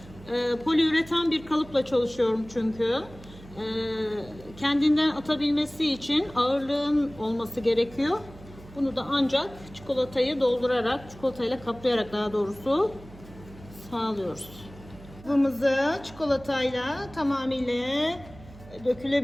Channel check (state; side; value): noise; right; hum, 19 dB below the sound